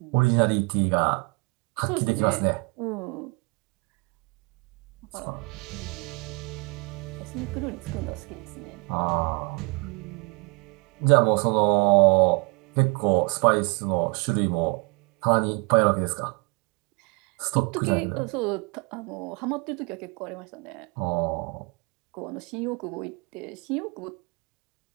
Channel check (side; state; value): left; quieter; 31.5 dB